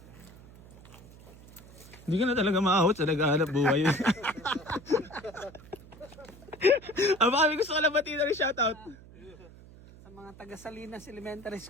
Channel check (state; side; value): noise; right; hum, 20 dB below the sound